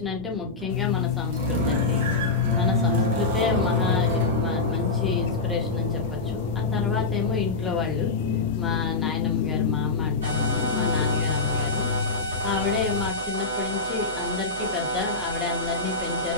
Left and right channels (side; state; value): right; quieter; 3.8 dB